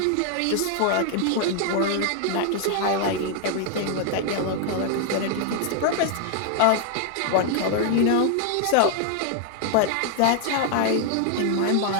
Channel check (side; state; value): both; different; correlation 0.00